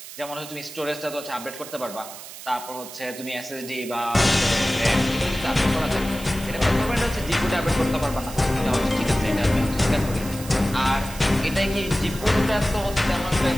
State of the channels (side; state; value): right; noise; hiss, 13 dB below the sound